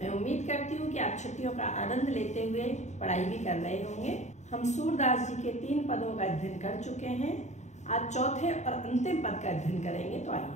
उम्मीद करती हूँ कि आप छुट्टियों का आनंद लेते हुए पढ़ाई भी कर रहे होंगे। हम सूरदास जी के 3 पदों का अध्ययन कर चुके हैं। आज चौथे और अंतिम पद का अध्ययन करेंगे। तो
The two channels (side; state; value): right; late; 0.34 ms